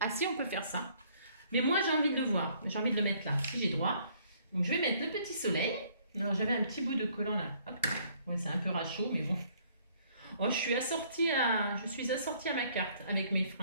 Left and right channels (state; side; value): inverted; both; correlation -0.63